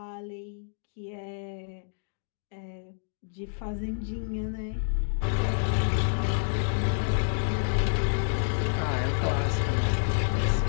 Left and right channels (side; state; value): right; silent; digital silence